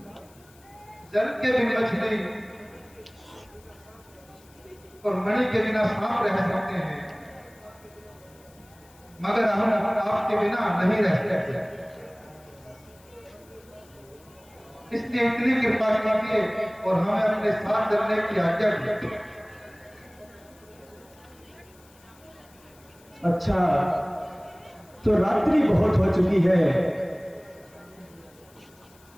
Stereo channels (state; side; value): noise; left; hiss, 28 dB below the sound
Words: जल के भी मछली और मणि के बिना सांप रह सकते हैं, मगर हम आपके बिना नहीं रह सकते। इसलिए इतनी कृपा कीजिए और हमें अपने साथ चलने की आज्ञा दीजिए। अच्छा, तो रात्रि बहुत हो चुकी है,